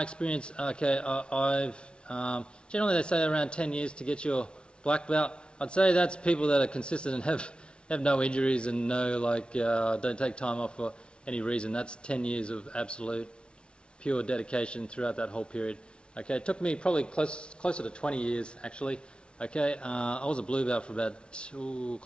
experience, okay, I've generally they say around 10 years to get your black belt. I'd say that's people that are consistent and have no injuries and don't take time off for any reason. That's 10 years of absolute pure dedication throughout that whole period. Okay, it took me probably closer to 20 years actually. Okay, I was a blue belt for about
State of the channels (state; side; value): late; right; 0.057 ms